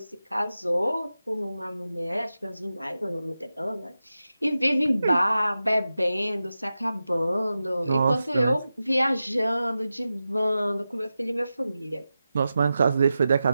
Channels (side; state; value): both; inverted; correlation -0.92